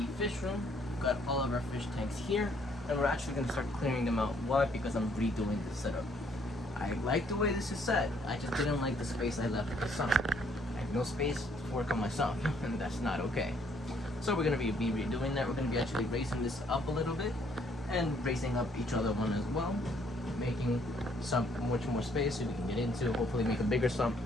fish room. We've got all of our fish tanks here, and we're actually gonna start clearing them out. Why? Because I'm redoing the setup. I like the way this is set. I just didn't like the space I left at the sump. I have no space to work on my sump, and that's not okay. So we're gonna be redoing that. We're gonna be actually raising this up a little bit and raising up each other one as well, making sump much more space so we can get into, hopefully make a bigger sump,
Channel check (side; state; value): both; normal; correlation 0.66